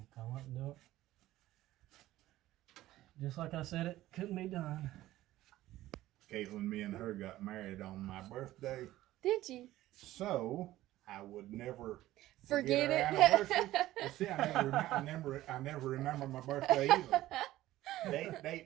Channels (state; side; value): quieter; left; 15.4 dB